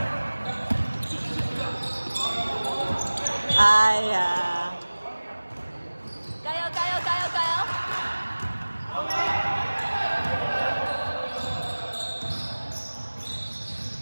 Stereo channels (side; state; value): both; inverted; correlation -1.00